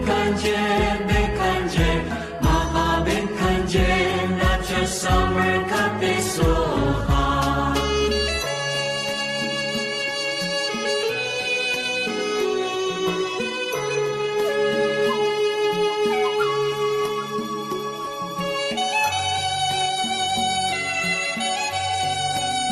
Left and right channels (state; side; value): identical; both; correlation 1.00